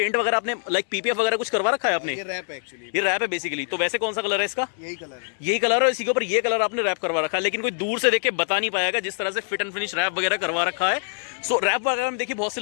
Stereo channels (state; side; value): silent; right; 62 dB below the other